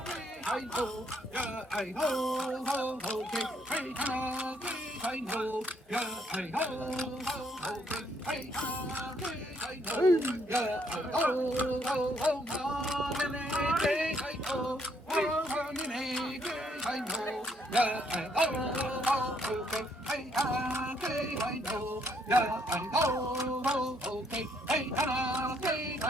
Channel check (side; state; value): both; normal; correlation 0.70